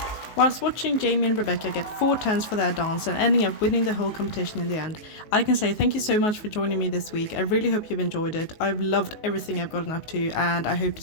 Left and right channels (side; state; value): right; late; 19 ms